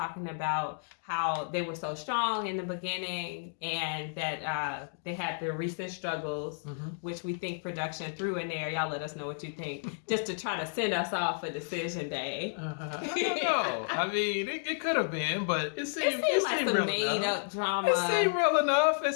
about how they were so strong in the beginning and that they had their recent struggles, which we think production threw in there. Y'all let us know what you think, just to try to send us off for Decision Day. I don't know. I mean, it could have been, but it seemed like some made-up drama. It seemed real enough. It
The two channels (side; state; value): right; silent; digital silence